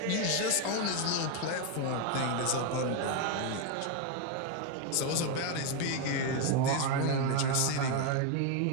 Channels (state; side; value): different; both; correlation 0.01